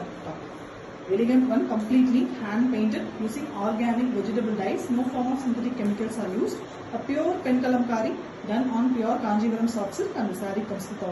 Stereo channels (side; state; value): both; identical; correlation 1.00